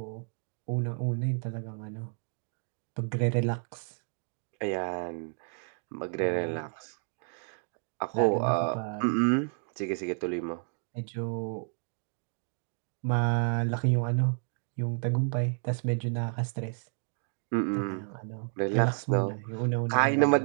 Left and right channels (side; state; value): left; silent; 57 dB below the other